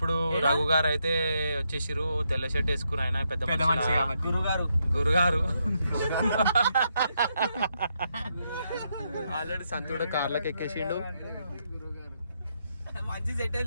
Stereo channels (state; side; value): inverted; both; correlation -0.80